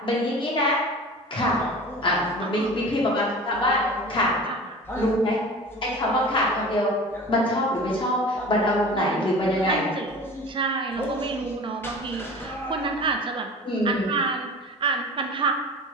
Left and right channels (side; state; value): both; normal; correlation 0.38